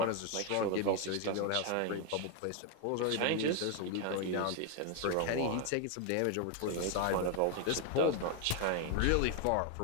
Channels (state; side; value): different; both; correlation 0.01